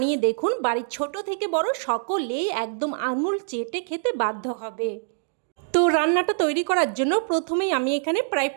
দেখুন, বাড়ির ছোট থেকে বড় সকলেই একদম আঙুল চেটে খেতে বাধ্য হবে। তো রান্নাটা তৈরি করার জন্য প্রথমেই আমি এখানে প্রায়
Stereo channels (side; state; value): left; silent; digital silence